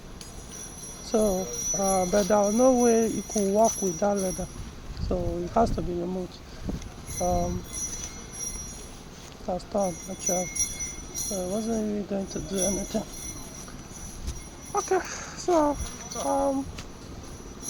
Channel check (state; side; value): identical; both; correlation 1.00